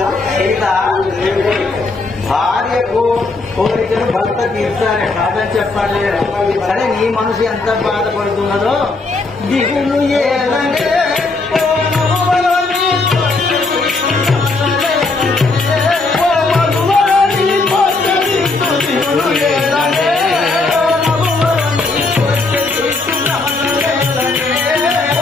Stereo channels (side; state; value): right; quieter; 3.6 dB